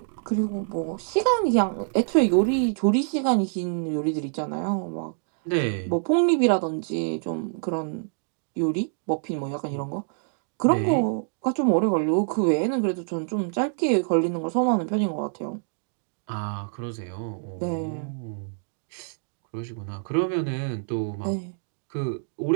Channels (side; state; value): left; silent; digital silence